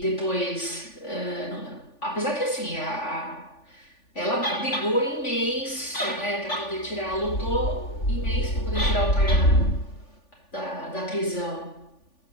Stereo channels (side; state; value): right; late; 3.5 ms